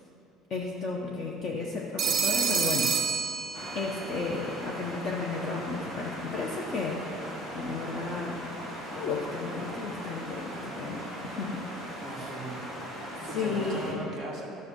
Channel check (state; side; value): normal; both; correlation 0.44